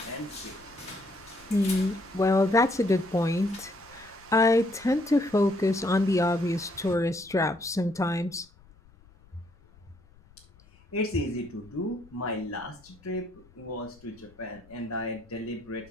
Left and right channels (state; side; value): noise; left; rumble, 27 dB below the sound